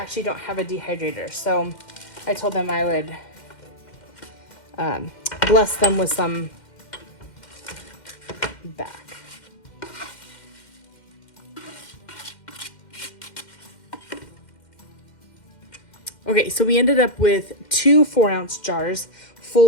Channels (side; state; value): right; late; 2.1 ms